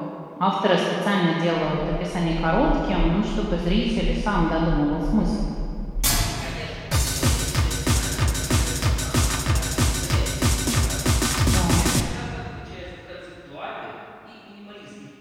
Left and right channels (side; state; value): both; identical; correlation 1.00